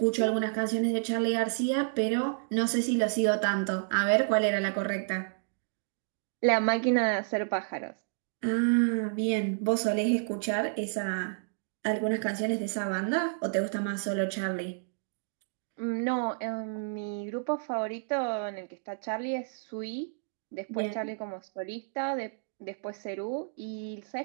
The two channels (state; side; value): silent; left; digital silence